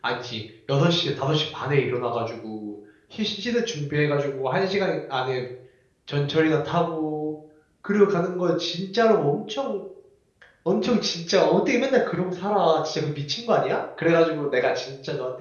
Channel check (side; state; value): both; identical; correlation 1.00